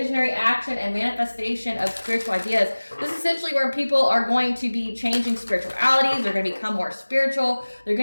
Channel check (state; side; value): inverted; both; correlation -1.00